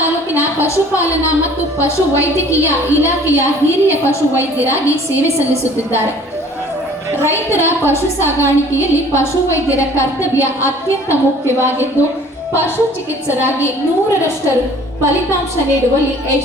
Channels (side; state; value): both; normal; correlation 0.51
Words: ಪಶುಪಾಲನಾ ಮತ್ತು ಪಶುವೈದ್ಯಕೀಯ ಇಲಾಖೆಯ ಹಿರಿಯ ಪಶುವೈದ್ಯರಾಗಿ ಸೇವೆ ಸಲ್ಲಿಸುತ್ತಿದ್ದಾರೆ. ರೈತರ ಪಶು ಸಾಗಾಣಿಕೆಯಲ್ಲಿ ಪಶುವೈದ್ಯರ ಕರ್ತವ್ಯ ಅತ್ಯಂತ ಮುಖ್ಯವಾಗಿದ್ದು, ಪಶು ಚಿಕಿತ್ಸಕರಾಗಿ 100ರಷ್ಟು ಫಲಿತಾಂಶ ನೀಡುವಲ್ಲಿ